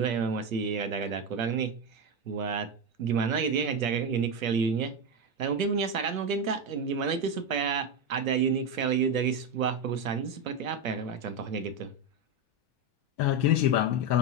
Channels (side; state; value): left; late; 1.2 ms